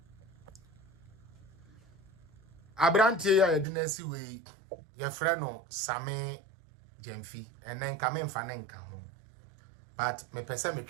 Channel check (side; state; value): left; drops out; at 3.7 s